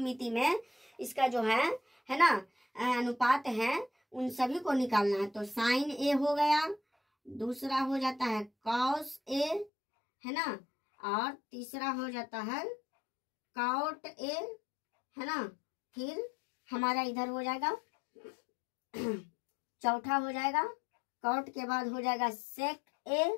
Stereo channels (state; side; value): drops out; right; at 9.7 s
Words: में इसका जो है ना अनुपात है उन सभी को निकालना है। तो साइन ए हो गया, दूसरा हो जाता है कॉस ए, है ना, और तीसरा हो जाता है कॉट ए, है ना, फिर हमारा इधर हो जाएगा चौथा हो जाएगा कॉट के बाद हो जाएगा सेक ए,